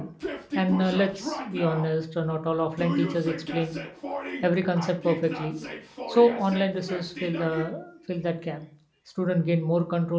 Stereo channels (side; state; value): both; identical; correlation 1.00